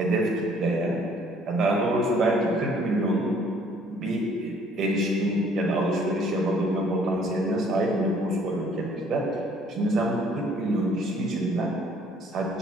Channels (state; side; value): normal; both; correlation 0.60